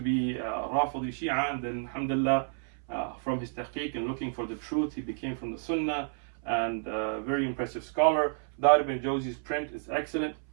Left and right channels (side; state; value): left; silent; 57 dB below the other